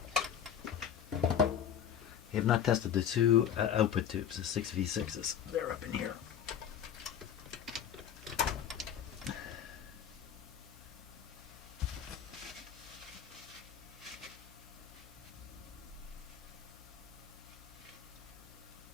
I have not tested the two output tubes, the 6V6s. They're up in here.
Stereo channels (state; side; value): quieter; right; 8.9 dB